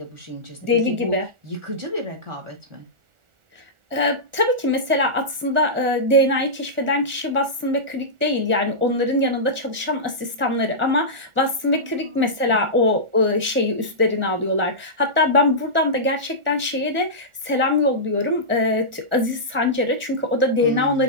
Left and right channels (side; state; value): left; late; 1.4 ms